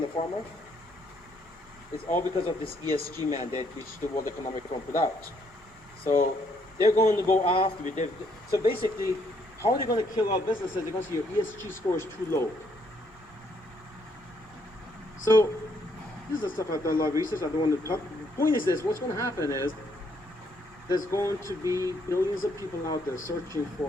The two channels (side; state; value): both; normal; correlation 0.70